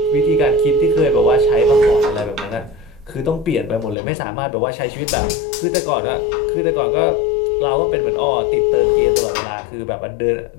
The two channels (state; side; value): drops out; right; at 4.0 s